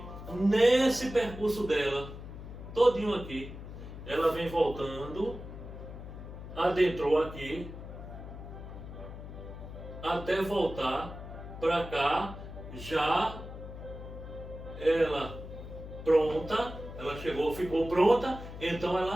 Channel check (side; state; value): left; noise; hum, 11 dB below the sound